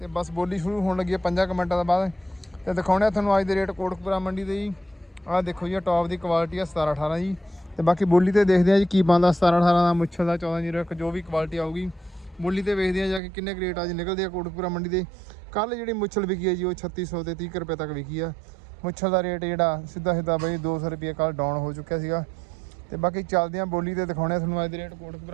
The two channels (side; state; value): left; drops out; at 13.2 s